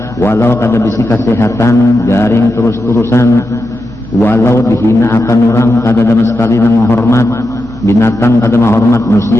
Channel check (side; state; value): both; normal; correlation 0.88